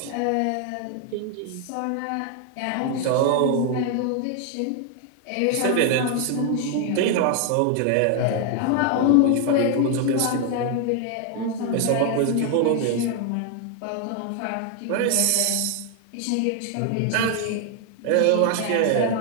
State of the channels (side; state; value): both; different; correlation 0.00